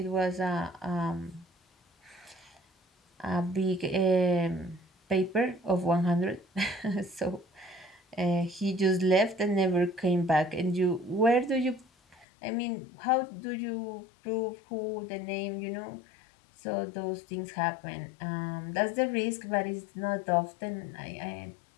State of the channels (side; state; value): right; drops out; at 12.2 s